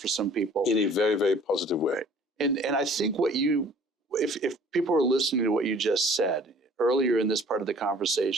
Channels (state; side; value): normal; both; correlation 0.52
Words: some people. In a very, very positive way. And I think if people are listening to what you just said, earlier in this part of the